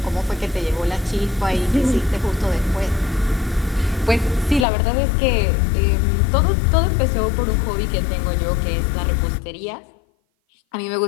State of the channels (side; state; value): right; drops out; at 4.7 s